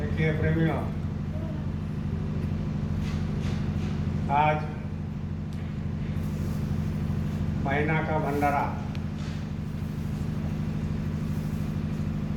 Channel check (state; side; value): identical; both; correlation 1.00